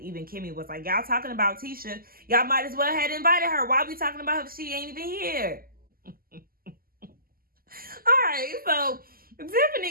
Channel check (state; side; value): late; left; 0.42 ms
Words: Kimmy was like, y'all talking about Tisha. Y'all might as well have invited her. Why are we talking about her if she ain't even here? All right, so